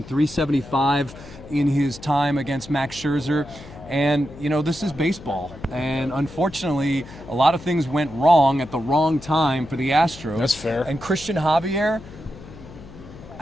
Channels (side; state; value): left; noise; hum, 17 dB below the sound